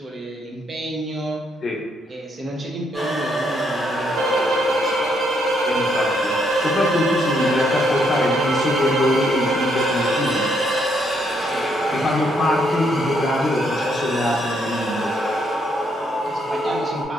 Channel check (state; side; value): normal; both; correlation 0.73